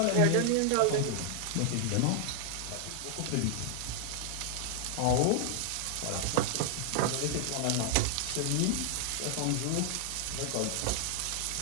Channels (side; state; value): both; different; correlation 0.00